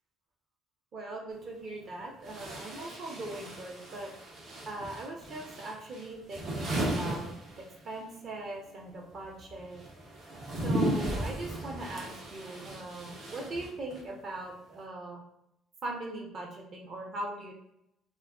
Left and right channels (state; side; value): normal; both; correlation 0.64